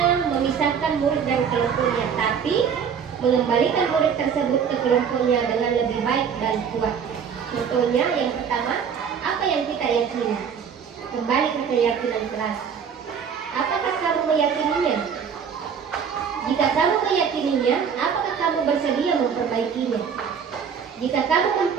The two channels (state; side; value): quieter; left; 7.0 dB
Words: memisahkan murid dari kelompoknya, tapi mengembalikan murid tersebut ke kelompoknya dengan lebih baik dan kuat. Contohnya, yang pertama, apa yang kita yakini? Kembali ke keyakinan kelas. Apakah kamu meyakininya? Jika kamu meyakininya, apakah kamu bersedia memperbaikinya? Jika kamu